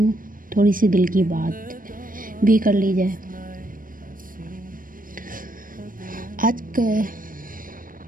थोड़ी सी दिल की बात भी कर ली जाए। आज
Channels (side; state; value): left; late; 0.40 ms